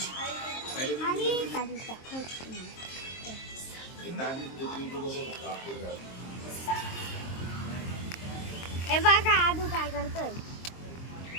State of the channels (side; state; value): right; late; 23 ms